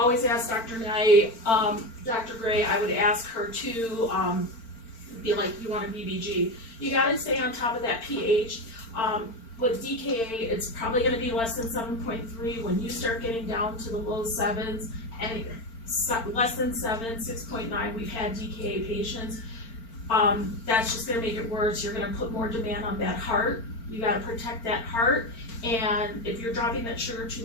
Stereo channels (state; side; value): late; right; 4.4 ms